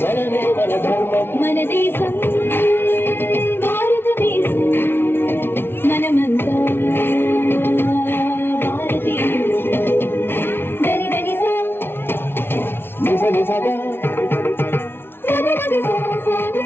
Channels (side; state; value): right; late; 0.11 ms